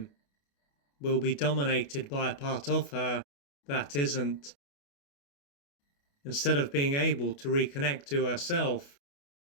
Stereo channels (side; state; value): right; late; 28 ms